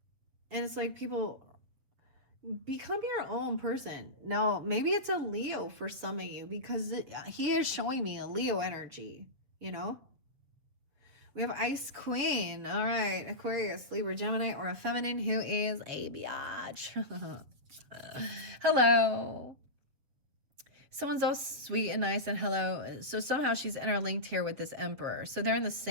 And it's like, people, become your own person. Now, maybe it's a Leo for some of you because he is showing me a Leo energy, you know? We have Ice Queen. All right. Aquarius, Libra, Gemini, or a feminine who is a biatch. Hello. Someone's all sweet and nice and hello. So somehow she's interlinked here with this emperor. So they're in the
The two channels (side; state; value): left; late; 7.5 ms